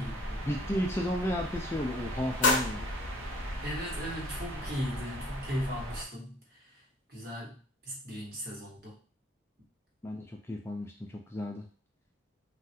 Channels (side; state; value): both; normal; correlation 0.54